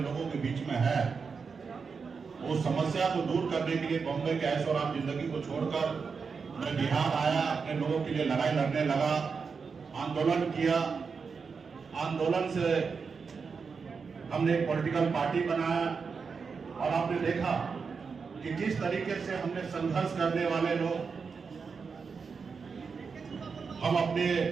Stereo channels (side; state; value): left; quieter; 5.4 dB